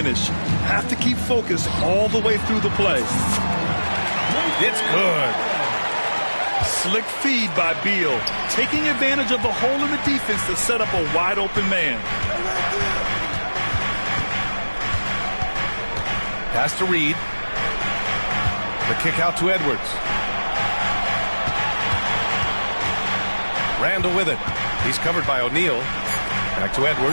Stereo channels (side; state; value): both; inverted; correlation -1.00